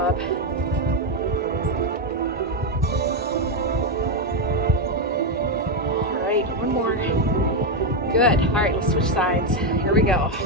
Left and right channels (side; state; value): both; normal; correlation 0.05